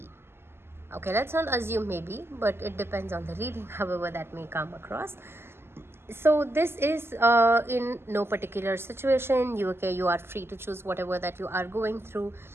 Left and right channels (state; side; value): late; left; 0.12 ms